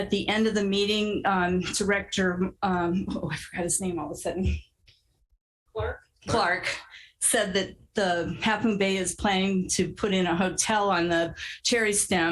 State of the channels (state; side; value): identical; both; correlation 1.00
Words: the end of the meeting, Director, I forgot his name all of a sudden. Clark said that the Half Moon Bay is planning to put in a hotel on the Cherry